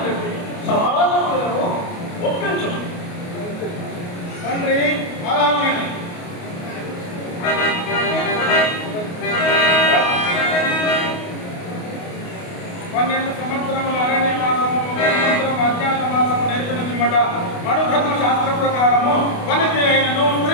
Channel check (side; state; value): right; late; 28 ms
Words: కట్టి సమాధానములను ఒప్పించు. తండ్రి అలాగే 12 సంవత్సరములు అరణ్యవాసము, 1 సంవత్సరం అజ్ఞాతవాసము నేర్పిన పిమ్మట మనుధర్మ శాస్త్ర ప్రకారము వనిత అయినను